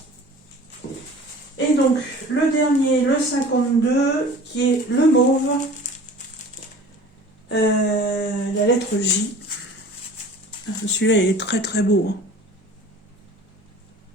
Et donc, le dernier, le 52, qui est le mauve, la lettre J. Celui-là, il est très très beau. Hein.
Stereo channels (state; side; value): normal; both; correlation 0.43